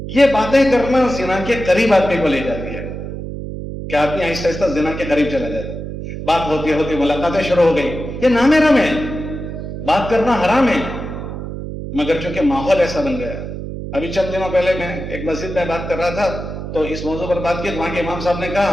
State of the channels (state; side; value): noise; right; hum, 7 dB below the sound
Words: یہ باتیں کرنا زنا کے قریب آدمی کو لے جاتی ہے کہ آدمی آہستہ آہستہ زنا کے قریب چلا جاتا ہے. بات ہوتی ہوتی ملاقاتیں شروع ہو گئی، یہ نام رم ہے، بات کرنا حرام ہے، مگر چونکہ ماحول ایسا بن گیا. ابھی چند دنوں پہلے میں ایک مسجد میں بات کر رہا تھا تو اس موضوع پر بات کی، وہاں کے امام صاحب نے